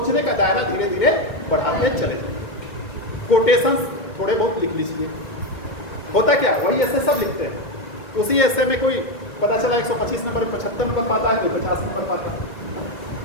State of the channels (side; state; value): right; late; 2.1 ms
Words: का दायरा धीरे धीरे बढ़ाते चले। कोटेशंस थोड़े बहुत लिख लीजिए। होता क्या, वही एस्से सब लिखते हैं, उसी एस्से में कोई पता चला 125 नंबर 75 नंबर पाता है, कोई 50 नंबर पाता है।